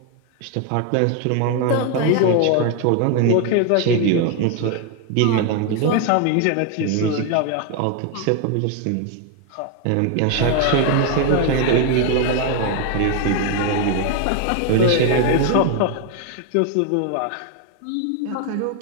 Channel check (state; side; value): different; both; correlation 0.01